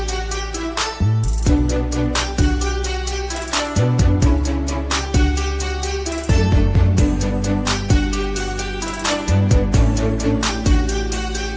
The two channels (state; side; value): identical; both; correlation 1.00